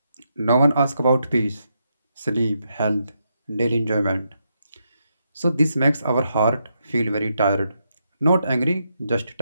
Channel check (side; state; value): both; inverted; correlation -0.81